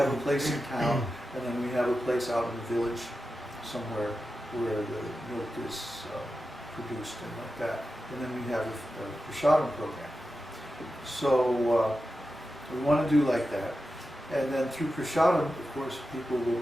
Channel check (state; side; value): normal; both; correlation 0.91